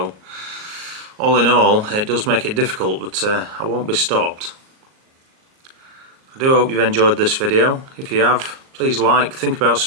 all in all it does make it difficult, but I won't be stopped. I do hope you've enjoyed this video. If you have, please like, think about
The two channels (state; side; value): late; left; 38 ms